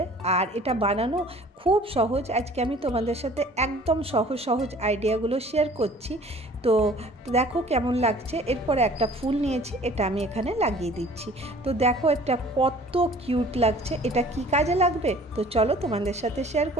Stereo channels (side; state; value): both; normal; correlation 0.50